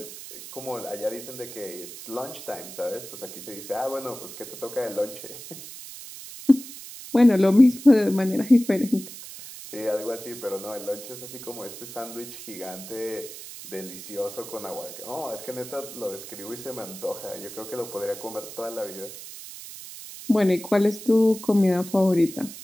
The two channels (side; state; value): right; noise; hiss, 13 dB below the sound